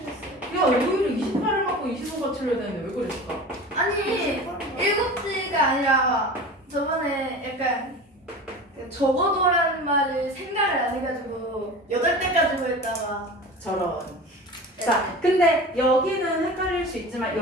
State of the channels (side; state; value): both; normal; correlation 0.35